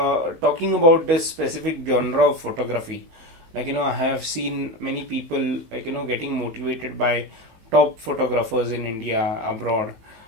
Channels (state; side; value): late; left; 18 ms